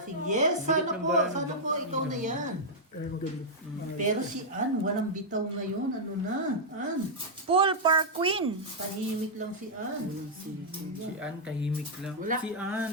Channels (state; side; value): normal; both; correlation -0.07